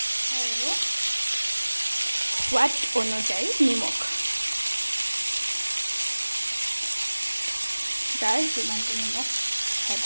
আৰু সোৱাদ অনুযায়ী নিমখ যাৰ যিমানটো নিমখ খাই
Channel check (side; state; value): both; inverted; correlation -1.00